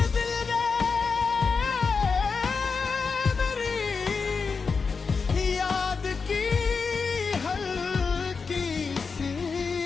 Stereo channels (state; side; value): quieter; right; 5.0 dB